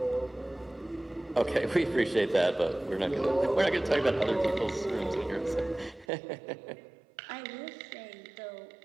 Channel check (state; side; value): drops out; left; at 6.1 s